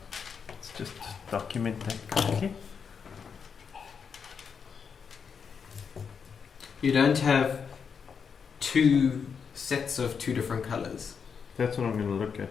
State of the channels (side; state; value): right; quieter; 6.4 dB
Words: let's just document that quickly. You don't have two sets of two different colours. That's what I'm going to look